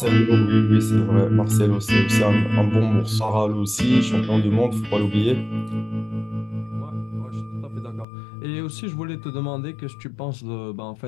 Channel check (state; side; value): drops out; right; at 8.1 s